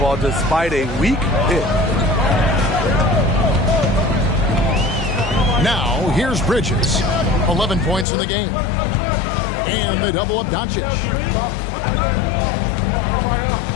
despite a weak hit. Now, here's Bridges. 11 points in the game. And they double up Doncic.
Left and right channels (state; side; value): drops out; right; at 8.1 s